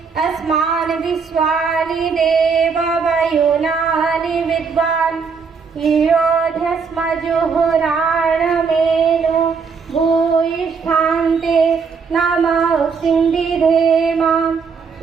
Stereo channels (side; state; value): left; quieter; 5.5 dB